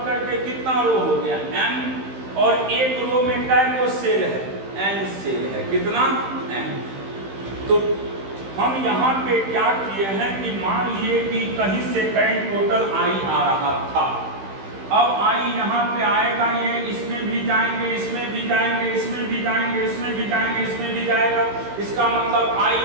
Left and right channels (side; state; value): left; late; 15 ms